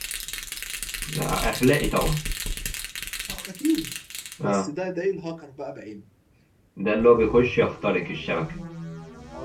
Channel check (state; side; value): identical; both; correlation 1.00